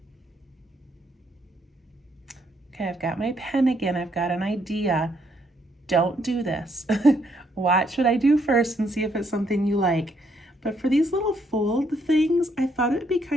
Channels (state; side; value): normal; both; correlation 0.72